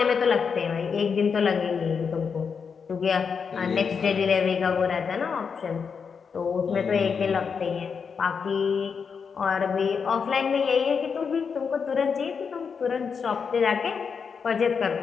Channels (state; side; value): quieter; right; 6.0 dB